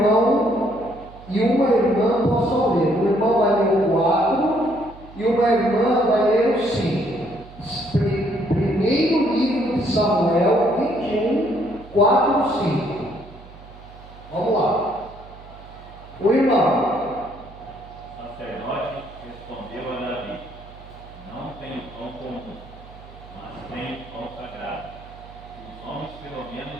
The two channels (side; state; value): right; noise; hum, 19 dB below the sound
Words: e uma irmã possam ler. Um irmão vai ler o 4 e uma irmã vai ler o 5. Primeiro livro de Samuel 21, 4 e 5. Vamos lá. O irmão. O sacerdote respondeu a Davi: não tenho pão comum, mas tenho pão sagrado. Os homens, pelo